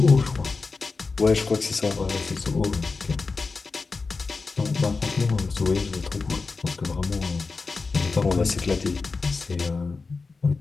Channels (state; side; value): quieter; right; 4.2 dB